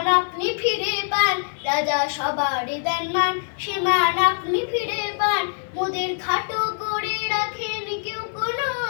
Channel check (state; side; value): silent; right; 63 dB below the other